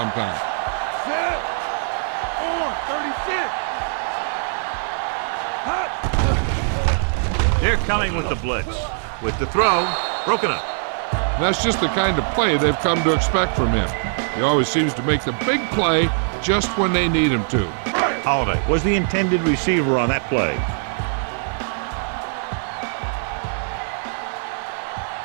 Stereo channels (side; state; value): left; silent; digital silence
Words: Set. On. 36. They're coming with the blitz. With the throw, broken up. That's just the kind of play they've come to expect from him. He always seems to make the big play just when they need him to. Holiday was the intended receiver on that play.